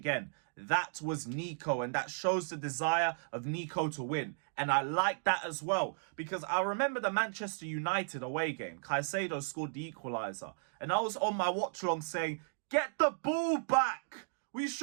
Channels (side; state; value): left; silent; digital silence